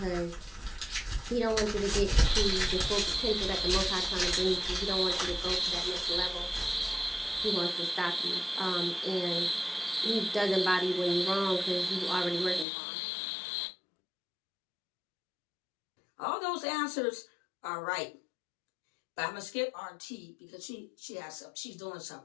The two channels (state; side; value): drops out; right; at 12.7 s